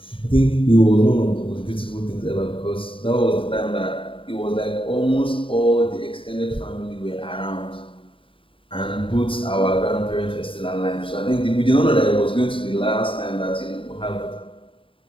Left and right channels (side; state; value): right; late; 0.25 ms